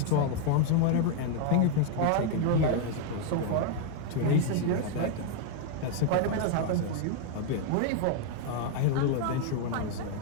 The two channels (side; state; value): both; different; correlation 0.01